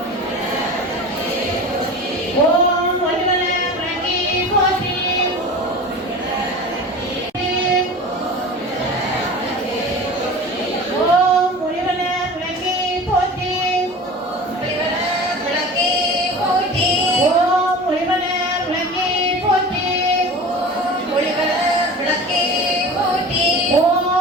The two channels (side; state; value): both; normal; correlation 0.36